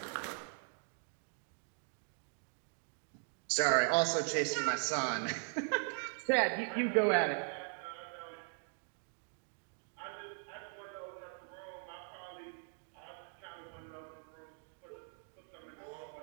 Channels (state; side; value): silent; left; 51 dB below the other